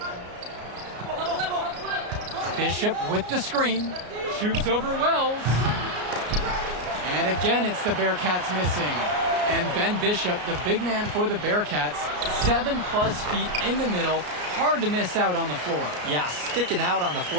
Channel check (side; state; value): left; late; 33 ms